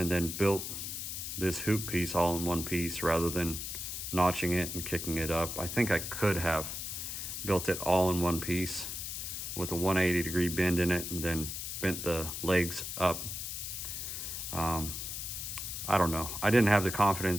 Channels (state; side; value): noise; left; hiss, 5 dB below the sound